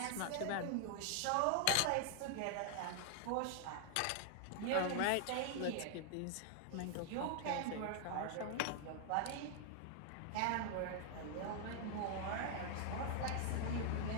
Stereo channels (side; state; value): both; different; correlation 0.00